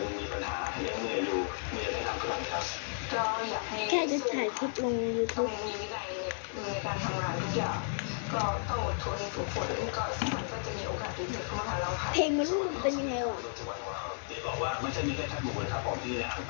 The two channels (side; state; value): right; silent; digital silence